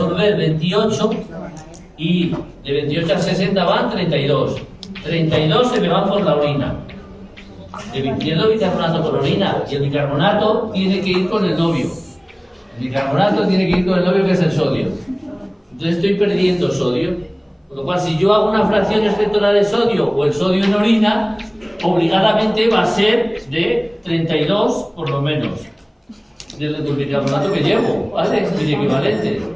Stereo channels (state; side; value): identical; both; correlation 1.00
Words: 28 y de 28 a 60 van 32. 32 se me van por la orina. Pierdo bicarbonato por orina y el bicarbonato tiene que ir con el novio. El bicarbonato tiene que ir con el novio, que es el sodio. Entonces estoy perdiendo sodio. Con lo cual, si yo hago una fracción exceptora de sodio o el sodio en orina, obligadamente va a ser de 32 por lo menos. Del bicarbonato que llevo, ¿vale? Es el equivalente.